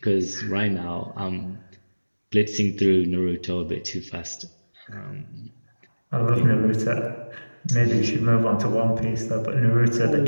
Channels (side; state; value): both; inverted; correlation -1.00